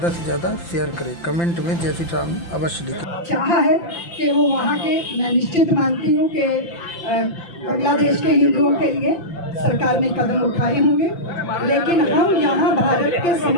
से ज़्यादा शेयर करें। कमेंट में जय श्री राम अवश्य लिखें। चाहा है कि वो वहाँ के, मैं निश्चित मानती हूँ कि बांग्लादेश के हिंदुओं के लिए सरकार ने कदम उठाए होंगे, लेकिन हम यहाँ भारत के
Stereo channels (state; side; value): late; right; 5.9 ms